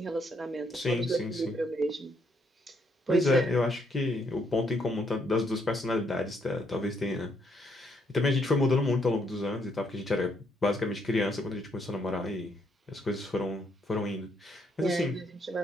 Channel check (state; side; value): normal; both; correlation 0.73